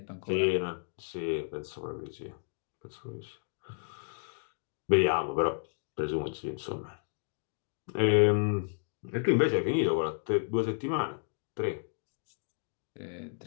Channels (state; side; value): silent; right; digital silence